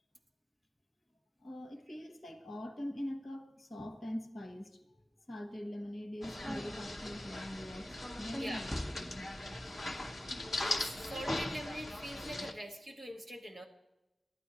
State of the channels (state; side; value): normal; both; correlation 0.95